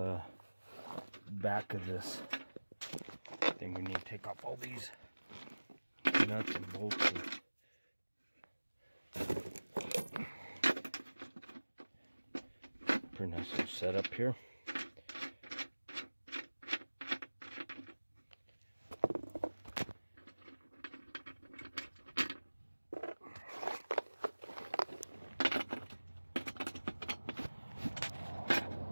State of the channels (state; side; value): inverted; both; correlation -1.00